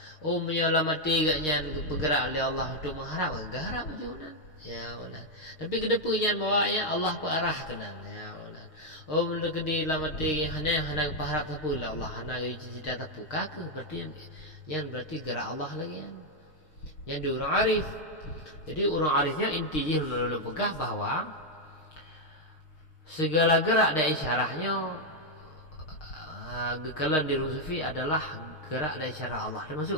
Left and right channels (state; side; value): late; right; 6.5 ms